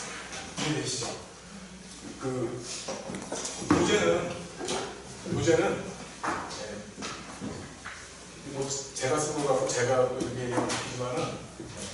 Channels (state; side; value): identical; both; correlation 1.00